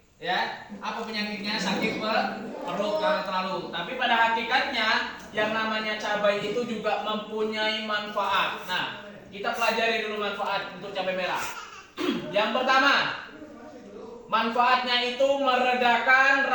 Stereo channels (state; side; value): identical; both; correlation 1.00